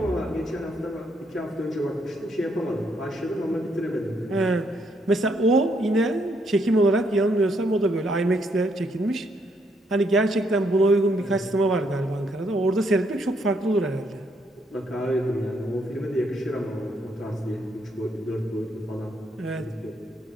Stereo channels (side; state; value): both; normal; correlation 0.73